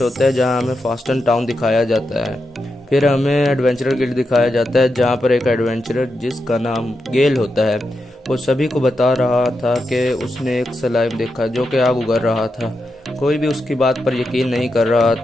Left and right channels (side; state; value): both; normal; correlation 0.86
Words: होता है जहाँ हमें फास्टन टाउन दिखाया जाता है। फिर हमें एडवेंचरर गिल्ड दिखाया जाता है जहाँ पर एक एडवेंचरर जिसका नाम गेल होता है वो सभी को बता रहा था कि उसने एक स्लाइम देखा जो कि आग उगल रहा था। कोई भी उसकी बात पर यकीन नहीं कर रहा